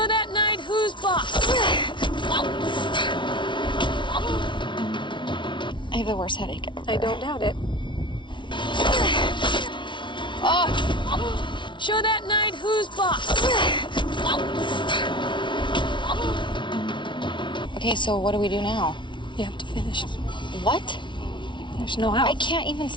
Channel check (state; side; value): late; right; 0.24 ms